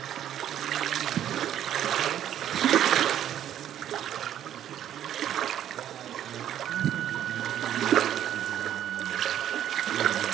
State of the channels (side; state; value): left; quieter; 10.8 dB